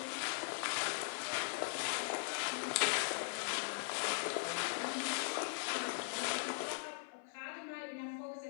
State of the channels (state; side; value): silent; right; 51 dB below the other